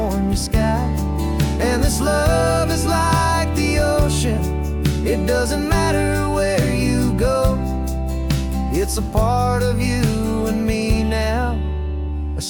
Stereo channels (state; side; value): identical; both; correlation 1.00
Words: sky. And this love is like the ocean, it doesn't matter where you go, it's a part of you and me now, a